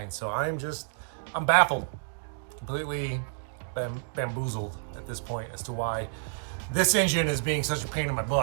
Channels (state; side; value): silent; left; digital silence